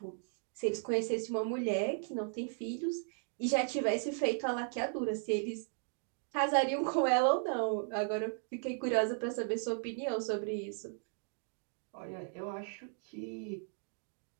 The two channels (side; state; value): left; silent; 54 dB below the other